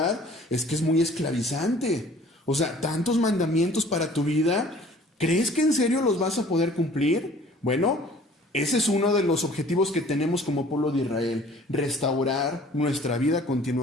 es que es muy esclavizante. O sea, tantos mandamientos para tu vida, ¿crees que en serio los vas a poder cumplir? Bueno, ese es uno de los objetivos que tenemos como pueblo de Israel, restaurar nuestra vida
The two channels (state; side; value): normal; both; correlation 0.52